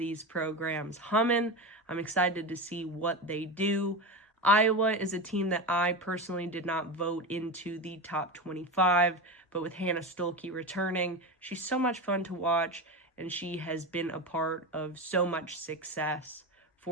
programs humming. I'm excited to see what they do. Iowa is a team that I personally did not vote into the top 25, but with Hannah Stolke returning, she's so much fun to watch, and she has been a part of so much success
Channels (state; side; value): normal; both; correlation 0.21